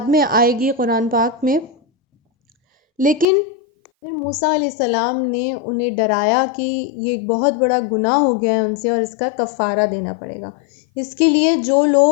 میں آئے گی قرآن پاک میں، لیکن پھر موسیٰ علیہ السلام نے انہیں ڈرایا کہ یہ ایک بہت بڑا گناہ ہو گیا ہے ان سے اور اس کا کفارہ دینا پڑے گا۔ اس کے لیے جو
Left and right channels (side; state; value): right; drops out; at 3.2 s